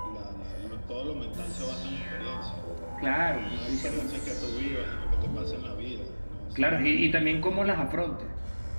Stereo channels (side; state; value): both; inverted; correlation -1.00